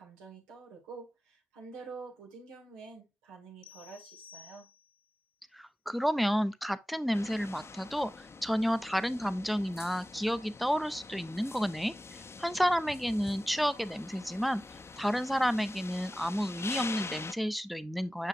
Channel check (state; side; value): normal; both; correlation 0.95